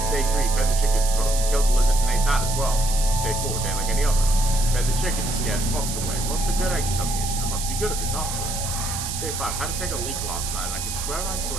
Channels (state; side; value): noise; right; hiss, 5 dB below the sound